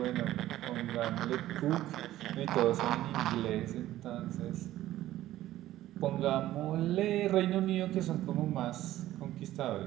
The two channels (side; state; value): left; quieter; 14.4 dB